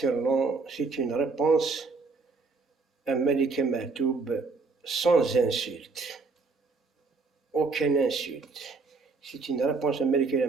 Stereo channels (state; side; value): quieter; left; 4.2 dB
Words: c'est une réponse à Malika Mahtoub sans insulte, aucune insulte. C'est une réponse à Malika